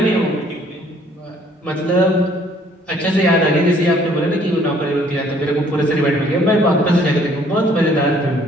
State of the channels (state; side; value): normal; both; correlation 0.61